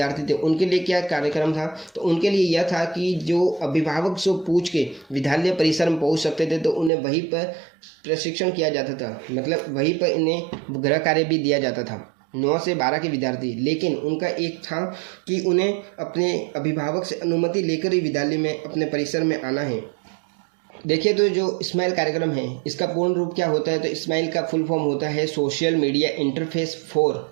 थे उनके लिए क्या कार्यक्रम था, तो उनके लिए यह था कि जो अभिभावक से पूछ के विद्यालय परिसर में पहुंच सकते थे, तो उन्हें वहीं पर प्रशिक्षण किया जाता था, मतलब वहीं पर इन्हें गृह कार्य भी दिया जाता था 9 से 12 के विद्यार्थी। लेकिन उनका एक था कि उन्हें अपने अभिभावक से अनुमति लेकर ही विद्यालय में अपने परिसर में आना है। देखिए तो जो स्माइल कार्यक्रम है इसका पूर्ण रूप क्या होता है, तो स्माइल का फुल फॉर्म होता है social media interface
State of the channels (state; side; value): drops out; left; at 6.9 s